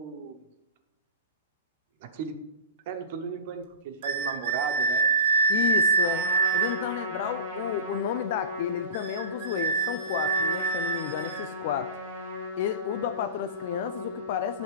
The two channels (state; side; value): inverted; both; correlation -0.31